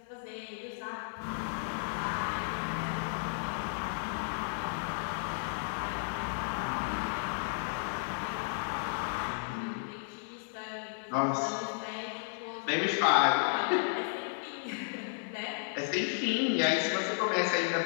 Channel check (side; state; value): right; silent; digital silence